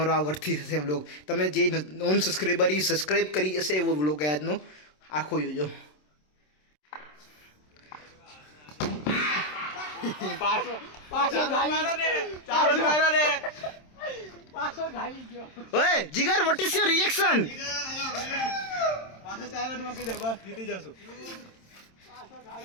આ વર્થી થશે વ્લોગ. તમે જે નોન સબસ્ક્રાઈબર એ સબસ્ક્રાઈબ કરી હશે એવો વ્લોગ આજનો આખો જોજો. ઓય જીગર, વોટ ઇઝ યોર રિએક્શન? પાછો 4 રન મૂકી દે, બસ જીતી જશું.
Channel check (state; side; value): late; right; 27 ms